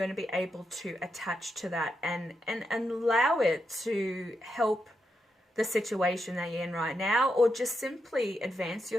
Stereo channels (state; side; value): normal; both; correlation 0.84